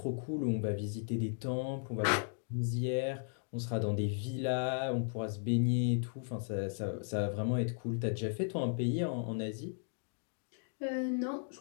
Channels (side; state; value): right; silent; digital silence